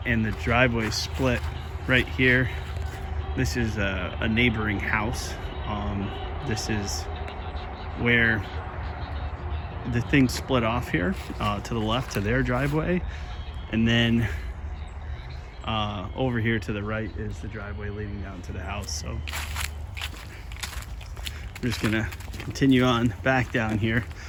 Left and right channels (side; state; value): both; identical; correlation 1.00